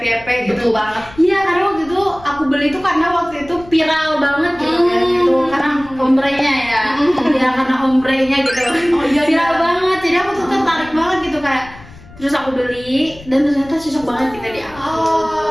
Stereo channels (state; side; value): noise; left; rumble, 20 dB below the sound